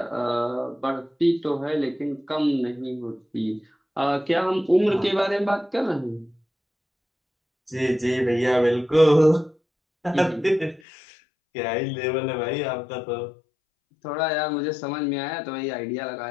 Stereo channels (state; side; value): drops out; right; at 10.8 s